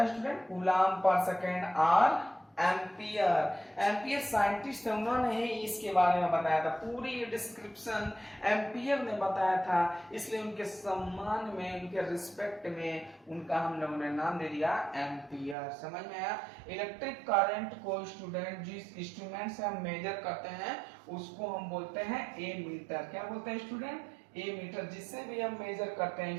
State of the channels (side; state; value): left; drops out; at 15.6 s